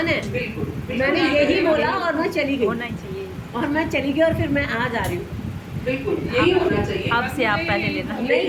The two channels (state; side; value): identical; both; correlation 1.00